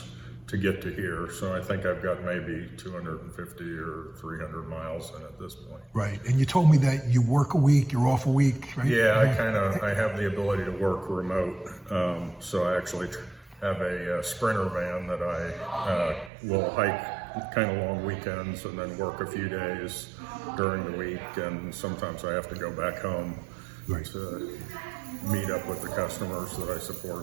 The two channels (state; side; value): drops out; left; at 16.3 s